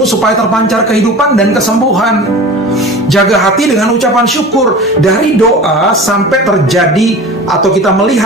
supaya terpancar kehidupan dan kesembuhan. Jaga hati dengan ucapan syukur. Dari doa sampai terjadi atau kita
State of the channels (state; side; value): normal; both; correlation 0.37